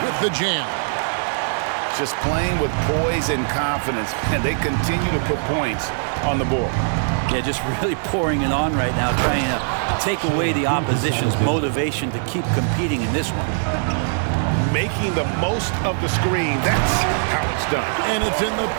the jam. Just playing with poise and confidence, and they continue to put points on the board. Yeah, just really pouring it on right now, trying to take away the opposition's motivation to keep competing in this one. Making the most of the screen, that's how it's done. And it's in the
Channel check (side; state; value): left; silent; digital silence